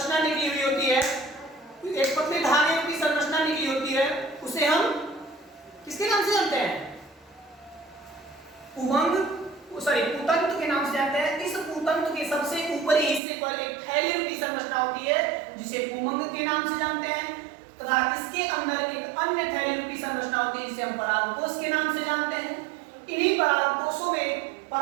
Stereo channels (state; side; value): drops out; left; at 13.2 s